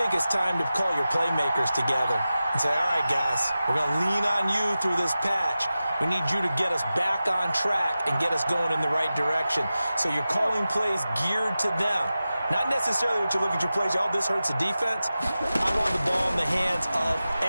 it's time to call your playmakers together and say, all right, guys, we're going to lean on you through this patch. We need you to get us back on track and get us going in the right direction. So you're calling plays geared to them. Not necessarily what you look at your plays, oh, this hurts the defense. I want the ball in the hands of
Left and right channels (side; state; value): both; inverted; correlation -0.94